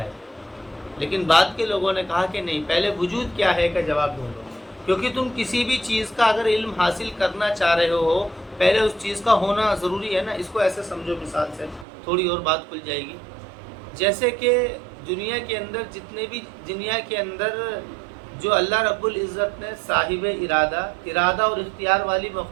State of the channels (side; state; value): left; drops out; at 11.9 s